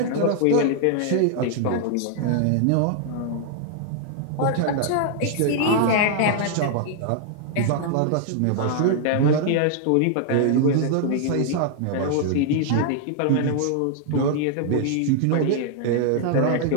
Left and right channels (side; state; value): both; different; correlation -0.01